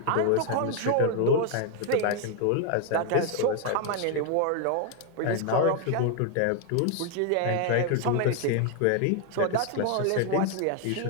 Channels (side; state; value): both; different; correlation 0.00